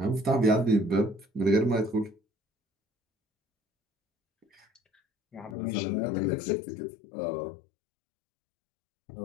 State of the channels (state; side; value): drops out; right; at 5.6 s